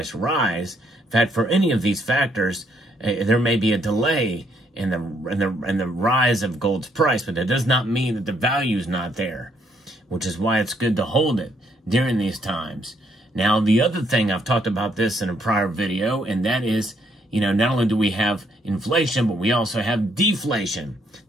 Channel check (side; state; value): both; normal; correlation 0.71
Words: rise. In fact, for any of these factors, there may be a delay in the rise of gold's price, but that does not mean that the value is not there, which is why it's good to hold it during these times. Now, the other thing, I've talked about this in a prior video, and that is, not only do we have inflation, but we also have deflation.